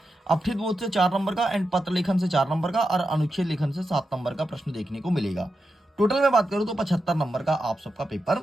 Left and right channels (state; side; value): normal; both; correlation 0.88